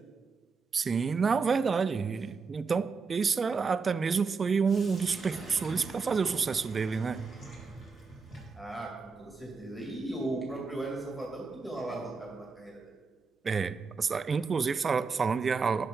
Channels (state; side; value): quieter; left; 4.9 dB